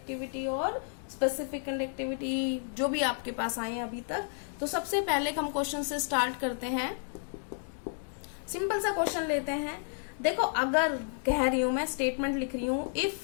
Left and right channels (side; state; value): right; silent; 57 dB below the other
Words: और स्पेसिफिक कंडक्टिविटी जो भी आपके पास आए हैं अभी तक। तो सबसे पहले हम क्वेश्चन से स्टार्ट करते हैं। सिंपल सा क्वेश्चन लेते हैं। देखो, अगर कह रही हूं मैं, स्टेटमेंट लिख रही हूं,